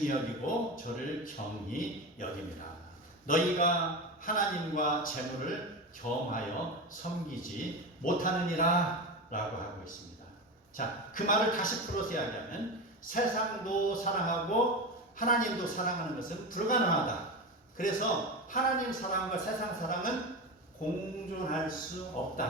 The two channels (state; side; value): normal; both; correlation 0.22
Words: 여기고 저를 경히 여깁니다. 너희가 하나님과 재물을 겸하여 섬기지 못하느니라 라고 하고 있습니다. 자, 그 말을 다시 풀어서 이야기하면 세상도 사랑하고 하나님도 사랑하는 것은 불가능하다. 그래서 하나님 사랑과 세상 사랑은 공존할 수